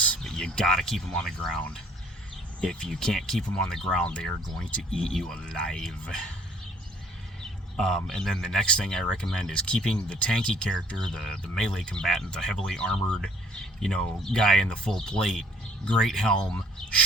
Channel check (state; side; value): normal; both; correlation 0.58